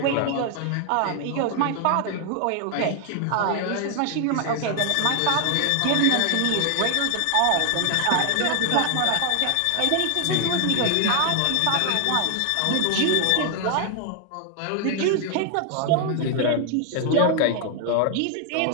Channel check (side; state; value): both; different; correlation 0.00